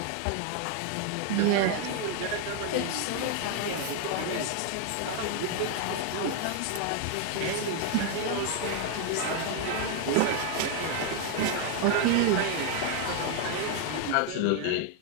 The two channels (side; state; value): both; different; correlation 0.00